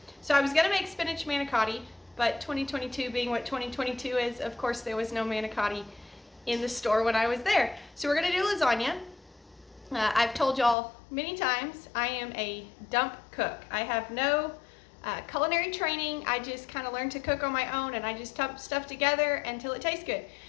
So I was going to make spinach manicotti, but 2022 being what 2022 is, of course there was no manicotti in the store when I was there. So we're going to do lasagna. I've told y'all many times I am a dump cook. I have no culinary training. I just kind of learned to cook on my own, and I just dump stuff together until it tastes good.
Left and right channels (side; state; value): right; drops out; at 10.8 s